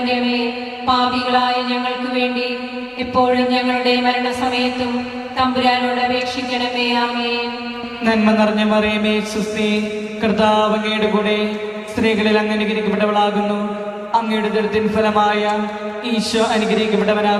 അമ്മേ, പാപികളായ ഞങ്ങൾക്ക് വേണ്ടി എപ്പോഴും ഞങ്ങളുടെ മരണസമയത്തും തമ്പുരാനോട് അപേക്ഷിക്കണമേ. ആമേൻ. നന്മ നിറഞ്ഞ മറിയമേ സുസ്തി, കർത്താവ് അങ്ങയുടെ കൂടെ സ്ത്രീകളിൽ അങ്ങ് അനുഗ്രഹിക്കപ്പെട്ടവളാകുന്നു. അങ്ങയുടെ ഉദരത്തിൻ ഫലമായ ഈശോ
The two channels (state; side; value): identical; both; correlation 1.00